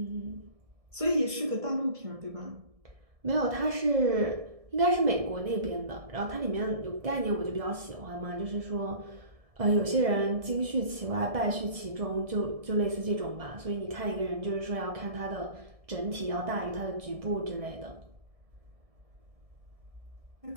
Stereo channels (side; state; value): left; late; 1.7 ms